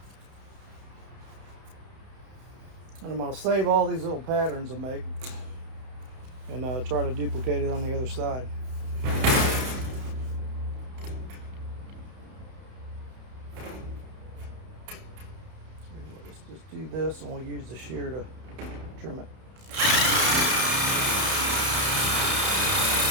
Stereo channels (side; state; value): left; late; 31 ms